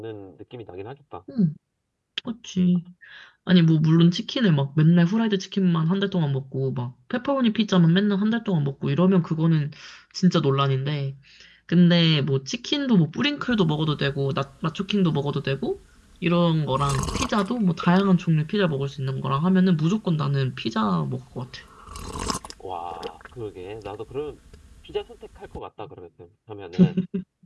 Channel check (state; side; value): identical; both; correlation 1.00